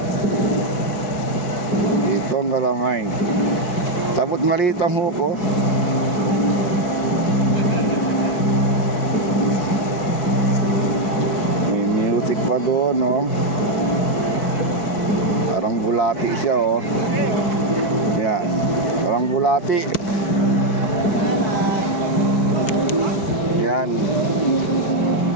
Ito ang galamay. Tapos maliit ang huko. May music pa doon, no? Parang bulati siya, oh. Yan, parang bulati. Yan.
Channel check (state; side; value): late; right; 4.6 ms